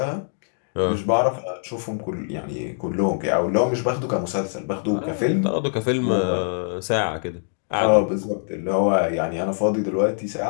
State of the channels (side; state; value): right; silent; digital silence